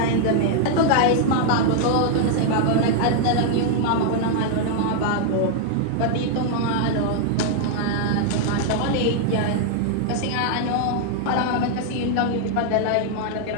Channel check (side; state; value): both; different; correlation 0.00